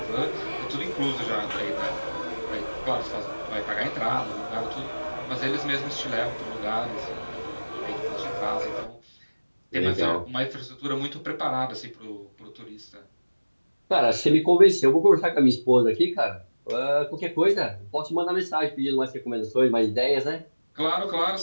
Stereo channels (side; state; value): both; inverted; correlation -1.00